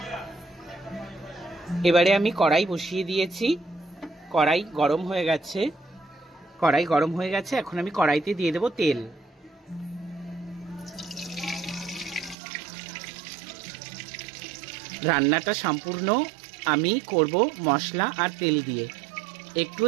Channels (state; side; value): drops out; left; at 12.4 s